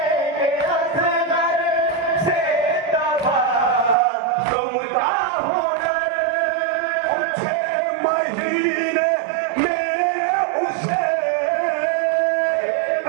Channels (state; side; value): drops out; left; at 4.0 s